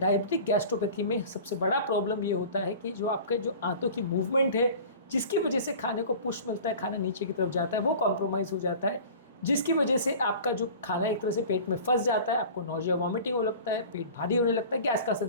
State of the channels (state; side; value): inverted; both; correlation -0.40